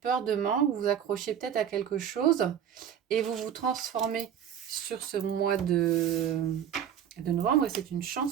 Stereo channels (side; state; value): left; quieter; 9.1 dB